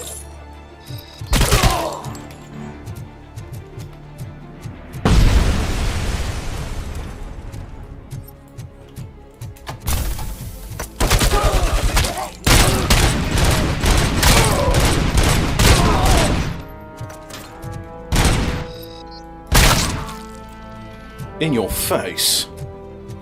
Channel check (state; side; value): identical; both; correlation 1.00